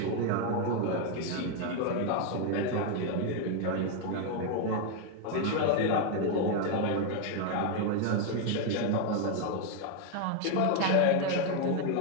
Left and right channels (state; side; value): different; both; correlation 0.01